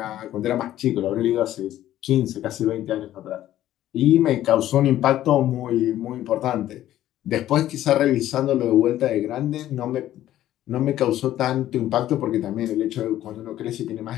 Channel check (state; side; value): quieter; right; 13.1 dB